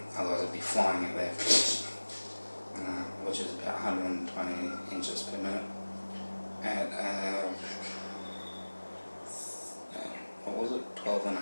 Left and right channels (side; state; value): both; inverted; correlation -1.00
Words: Otherwise I'd be flying it there, which is about 120 inches per minute. At what was it? 12 and a